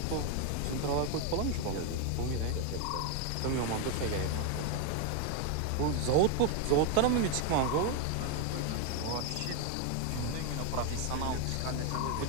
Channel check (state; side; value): different; both; correlation 0.01